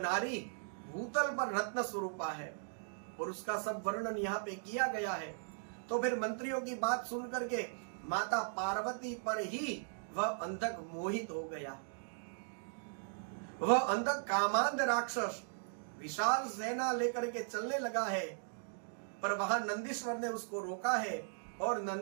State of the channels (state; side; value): silent; left; digital silence